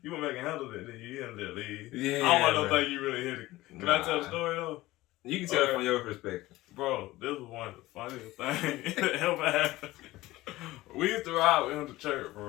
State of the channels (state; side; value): quieter; right; 18.0 dB